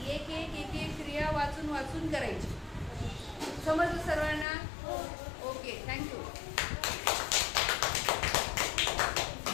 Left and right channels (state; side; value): drops out; right; at 4.5 s